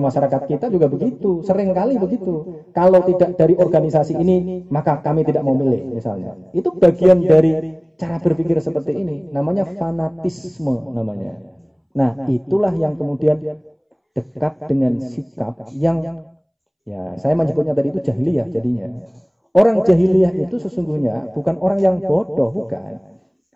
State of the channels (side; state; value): both; identical; correlation 1.00